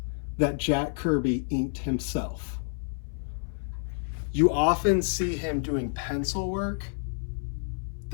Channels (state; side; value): silent; right; 57 dB below the other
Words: that Jack Kirby inked himself. You often see him doing pencil work